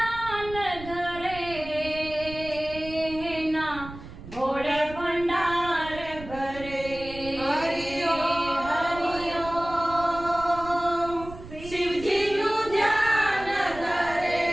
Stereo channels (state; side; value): noise; right; rumble, 14 dB below the sound